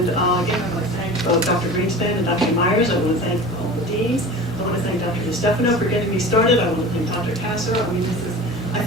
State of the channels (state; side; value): normal; both; correlation 0.36